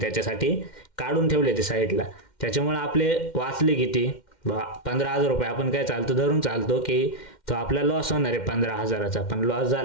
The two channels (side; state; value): right; late; 2.1 ms